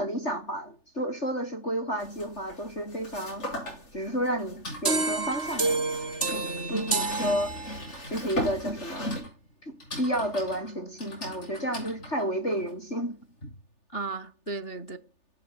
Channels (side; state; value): right; late; 3.4 ms